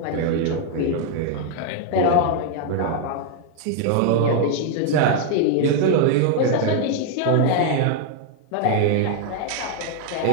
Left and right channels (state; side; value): different; both; correlation 0.00